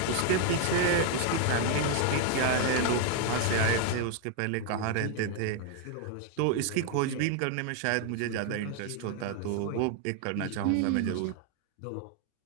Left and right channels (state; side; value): different; both; correlation 0.01